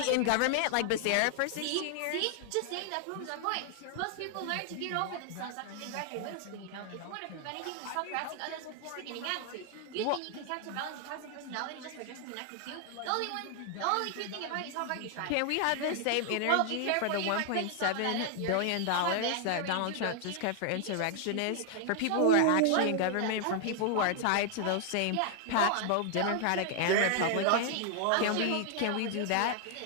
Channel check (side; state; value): both; different; correlation 0.00